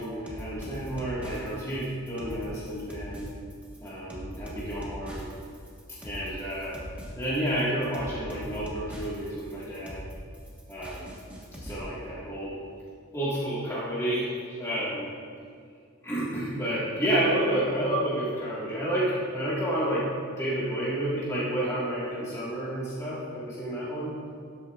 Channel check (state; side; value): normal; both; correlation 0.31